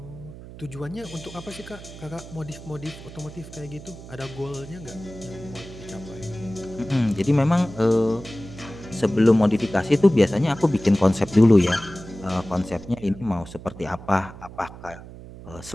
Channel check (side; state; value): right; noise; hum, 15 dB below the sound